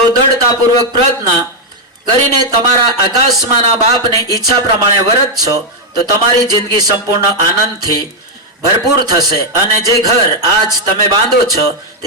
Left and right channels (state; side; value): normal; both; correlation 0.00